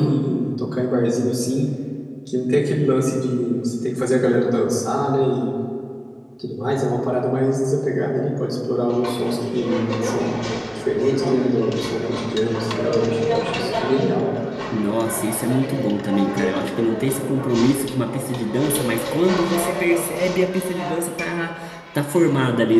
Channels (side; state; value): both; identical; correlation 1.00